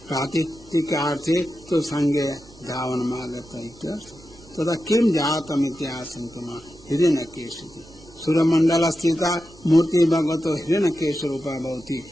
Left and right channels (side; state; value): both; normal; correlation 0.90